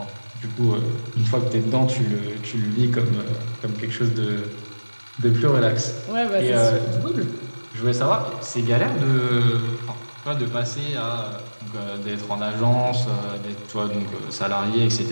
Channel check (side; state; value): both; inverted; correlation -1.00